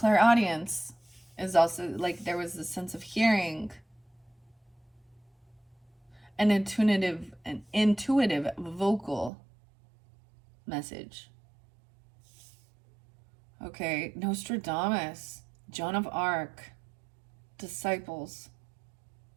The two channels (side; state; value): left; drops out; at 9.3 s